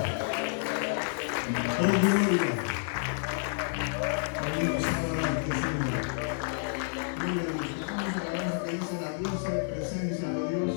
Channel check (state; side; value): silent; right; digital silence